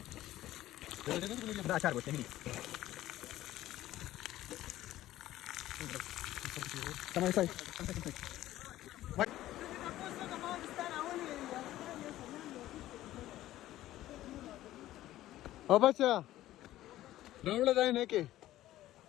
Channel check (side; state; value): right; quieter; 14.6 dB